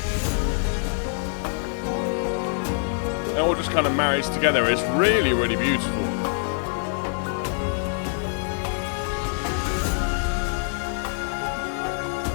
It all just kind of marries together. It's really, really beautiful.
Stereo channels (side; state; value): right; silent; 62 dB below the other